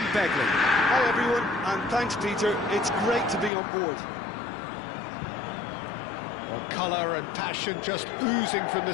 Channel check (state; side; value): drops out; right; at 3.5 s